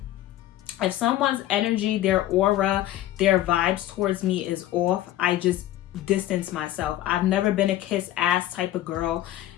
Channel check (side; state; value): right; quieter; 13.8 dB